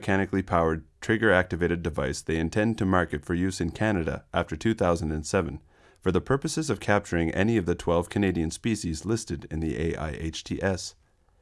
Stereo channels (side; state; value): both; identical; correlation 1.00